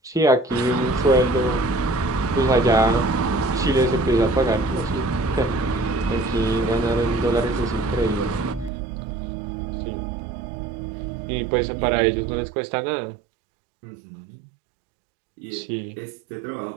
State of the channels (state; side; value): drops out; left; at 8.7 s